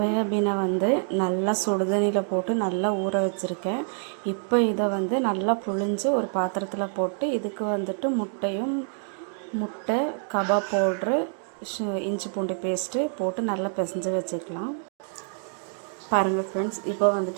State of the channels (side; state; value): left; silent; 61 dB below the other